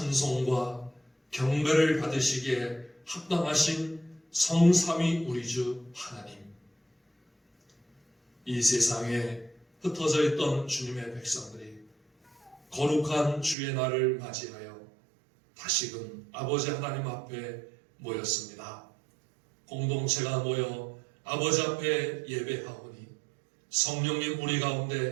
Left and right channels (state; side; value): drops out; left; at 13.6 s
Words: 경배를 받으시기에 합당하신 성삼위 우리 주 하나님, 이 세상에 흩어져 있던 주님의 백성들이 거룩한 주의 날을 맞이하여 다시금 아버지 하나님 앞에 모였습니다. 공동체가 모여 아버지 앞에 예배하오니 성령님 우리